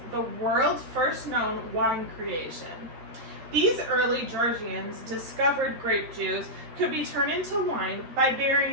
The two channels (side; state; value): left; late; 13 ms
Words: the world's first known wine creation. These early Georgians discovered grape juice could be turned into wine by